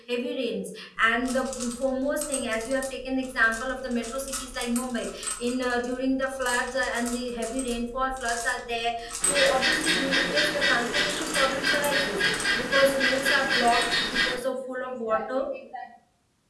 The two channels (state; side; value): identical; both; correlation 1.00